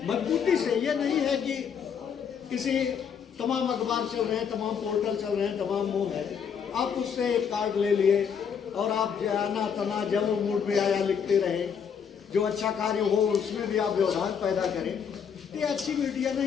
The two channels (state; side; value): quieter; right; 7.2 dB